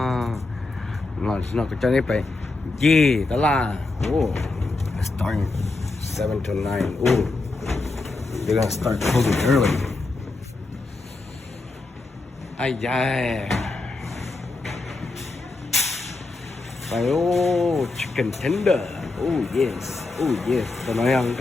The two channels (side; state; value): right; quieter; 3.4 dB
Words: nó có cho nên phải gì đó là starting 7 to 9 they're gonna start closing early ai da phải chicken tender yes tôi nói rằng